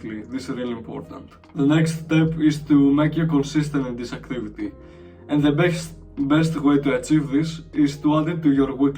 This is really important. The next step is to make you consistent in this activity, and the best way to achieve this is to add it to your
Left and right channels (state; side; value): identical; both; correlation 1.00